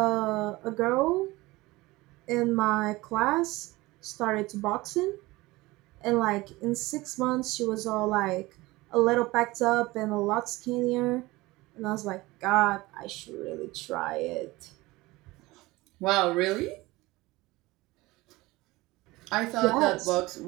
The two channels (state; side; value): quieter; left; 20.5 dB